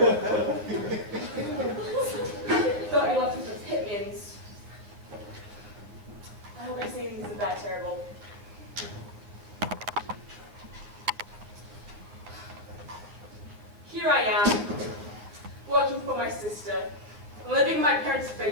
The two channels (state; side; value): late; left; 9.9 ms